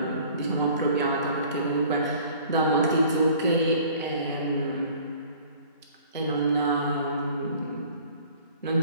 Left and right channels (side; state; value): both; inverted; correlation -0.51